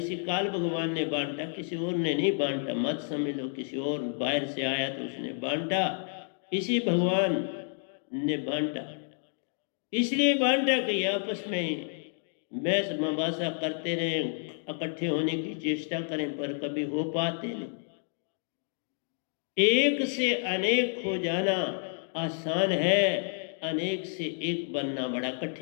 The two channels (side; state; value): right; silent; 58 dB below the other